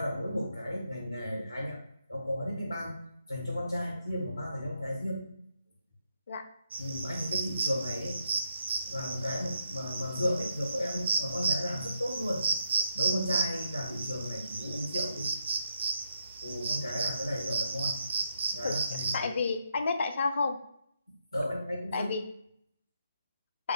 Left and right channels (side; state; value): both; inverted; correlation -0.80